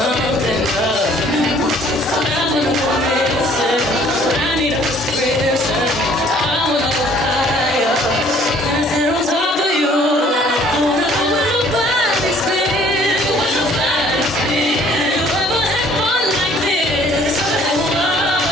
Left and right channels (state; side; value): normal; both; correlation 0.57